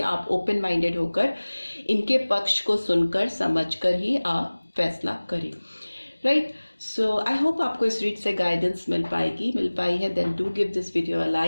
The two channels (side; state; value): both; inverted; correlation -1.00